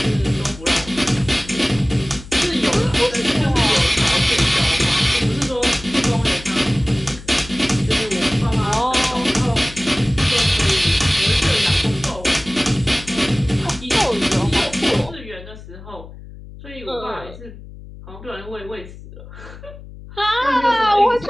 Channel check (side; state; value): left; noise; hum, 16 dB below the sound